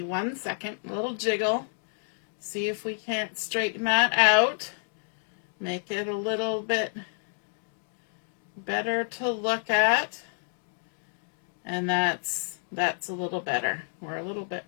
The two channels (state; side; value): silent; right; digital silence